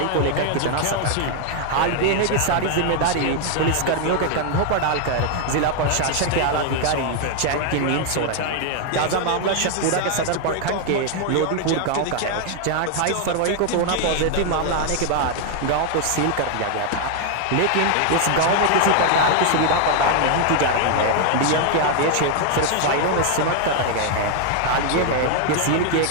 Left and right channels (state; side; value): different; both; correlation 0.00